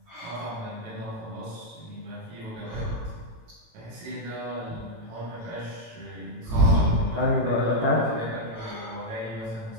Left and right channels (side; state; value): left; late; 18 ms